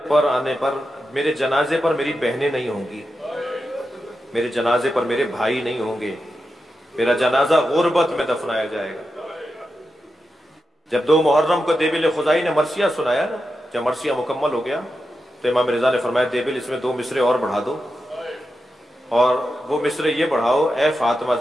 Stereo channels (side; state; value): both; normal; correlation 0.89